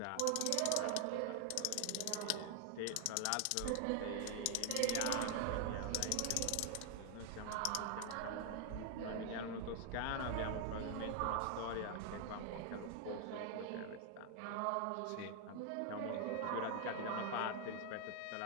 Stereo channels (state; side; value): different; both; correlation 0.00